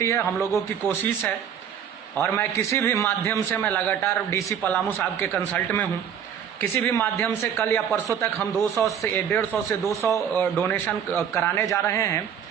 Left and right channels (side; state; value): left; quieter; 8.4 dB